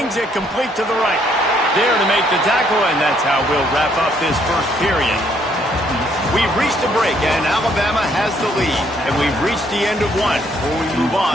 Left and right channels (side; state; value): both; normal; correlation 0.68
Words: it complete to the right. There to make the tackle, and that's how we'll wrap up this first period. We've reached a break, and Alabama has the lead. And we've reached the end of one. Before we move